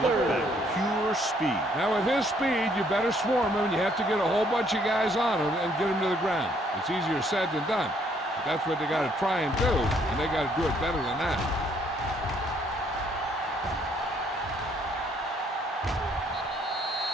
look back. Pure speed. Now, with his speed, you better swarm him, and you have to get a whole bunch of guys on him and get him to the ground. It's easier said than done. But that's what they got to try and do, and they got to do it better than that.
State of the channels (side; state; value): both; normal; correlation 0.67